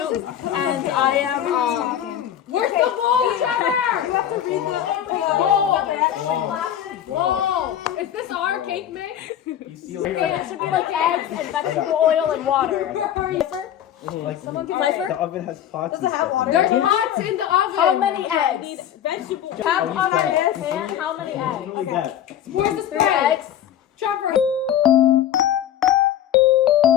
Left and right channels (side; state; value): right; quieter; 10.6 dB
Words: And I am, Where's the bowl, Trevor? You have to read the Whoa! Is this our cake mix? It should be like eggs and vegetable oil and water. Pfeiffer? The oven has pots. Does it have water? There's pots in the oven. How many eggs? Vegetable. Tap on our hand. How many eggs? Where's the 3 spread? eggs. Trevor.